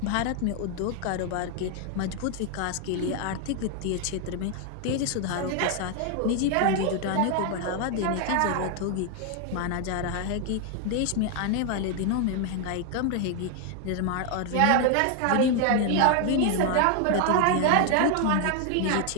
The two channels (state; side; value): different; both; correlation 0.00